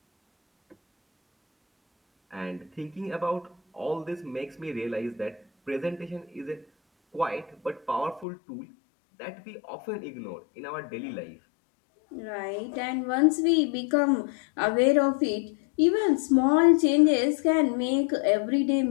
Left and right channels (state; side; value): drops out; right; at 8.2 s